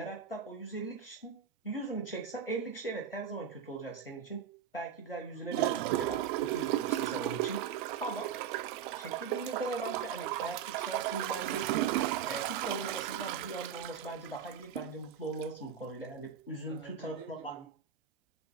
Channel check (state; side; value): quieter; left; 7.8 dB